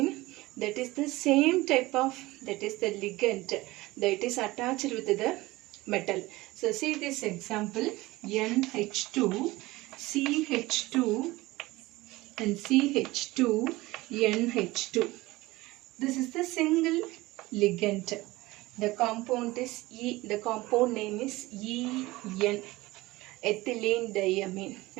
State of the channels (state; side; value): quieter; left; 19.8 dB